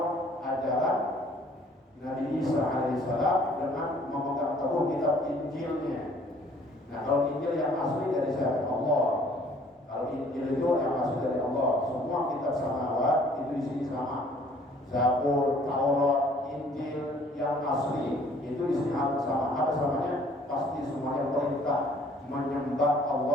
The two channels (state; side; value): normal; both; correlation 0.57